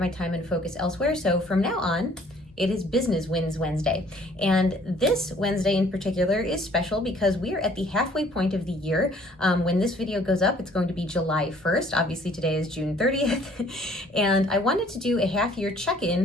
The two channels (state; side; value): normal; both; correlation 0.57